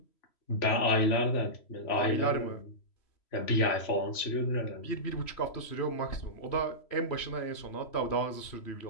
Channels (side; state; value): right; late; 3.1 ms